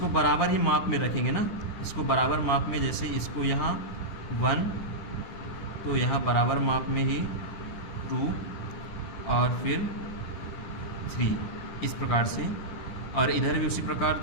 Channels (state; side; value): late; right; 10 ms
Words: बराबर ही माप में रखेंगे ना, इसको बराबर माप में, जैसे इसको यहाँ 1 तो यहाँ बराबर माप में ही 2 और फिर 3 इस प्रकार से, और इधर भी उसी प्रकार।